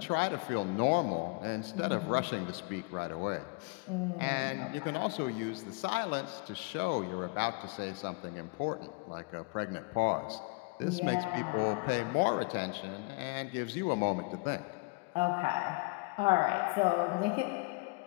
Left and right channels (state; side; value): quieter; right; 29.8 dB